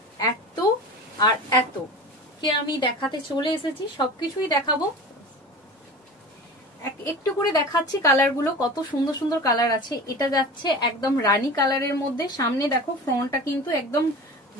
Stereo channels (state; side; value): normal; both; correlation 0.34